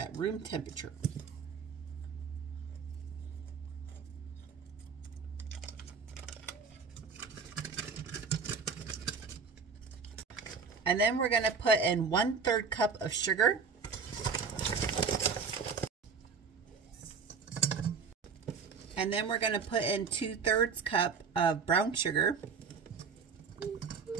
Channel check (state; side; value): quieter; left; 5.5 dB